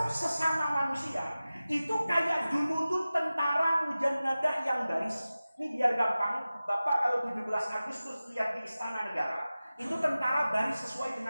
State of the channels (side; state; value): both; inverted; correlation -0.96